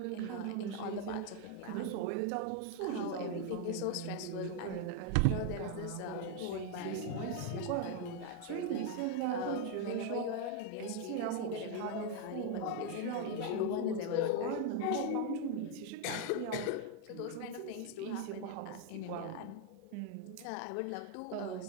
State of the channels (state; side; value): different; both; correlation 0.01